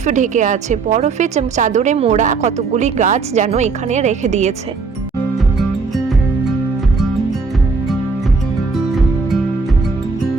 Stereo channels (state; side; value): quieter; left; 4.5 dB